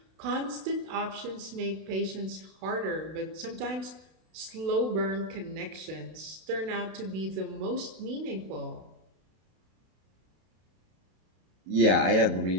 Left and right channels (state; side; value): late; left; 32 ms